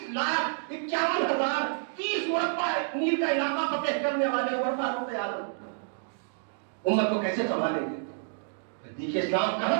مربع میل کا علاقہ فتح کرنے والے عمر فاروق اعظم امت کو کیسے سنبھالیں گے. دیکھیے اسلام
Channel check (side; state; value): left; silent; digital silence